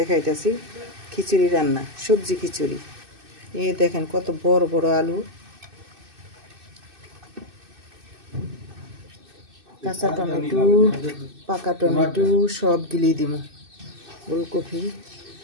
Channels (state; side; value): late; left; 2.6 ms